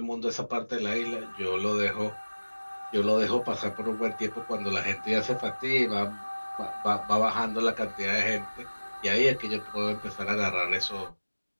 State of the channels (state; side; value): inverted; both; correlation -1.00